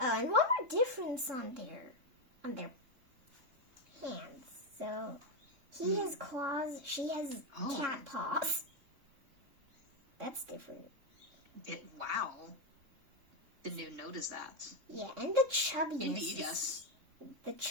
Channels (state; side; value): late; left; 3.4 ms